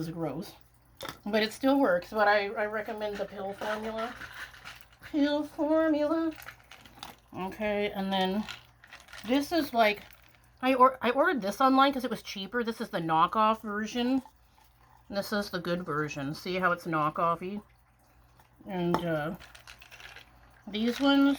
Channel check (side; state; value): both; identical; correlation 1.00